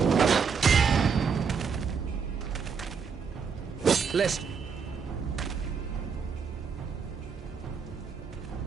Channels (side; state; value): left; quieter; 6.0 dB